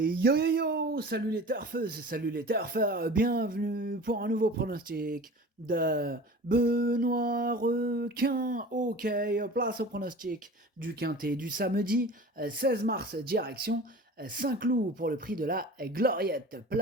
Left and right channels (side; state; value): both; normal; correlation 0.39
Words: yo yo! Salut les turfeuses, salut les turfeurs, bienvenue pour un nouveau pronostic de Benoît Requin. Ok, place au pronostic du quintet du samedi 16 mars, direction Saint-Cloud pour le prix de la Gloriette.